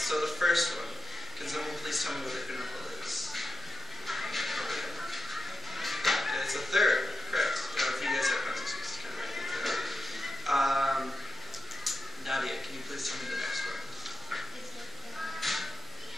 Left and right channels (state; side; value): normal; both; correlation 0.89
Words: the first one, can someone please tell me what the interval is? Okay, it's a third. Correct. If you guys have pencils, you just kind of write things down. Nadia, can you please tell me the next one?